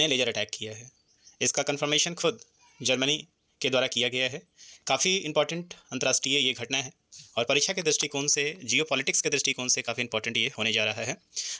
लेज़र अटैक किया है। इसका कन्फर्मेशन खुद जर्मनी के द्वारा किया गया है। काफ़ी इंपॉर्टेंट अंतर्राष्ट्रीय ये घटना है और परीक्षा के दृष्टिकोण से, जियोपॉलिटिक्स के दृष्टिकोण से काफ़ी इंपॉर्टेंट ये होने जा रहा है।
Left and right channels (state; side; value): identical; both; correlation 1.00